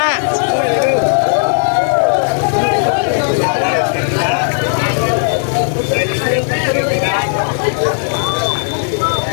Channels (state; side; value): silent; right; 64 dB below the other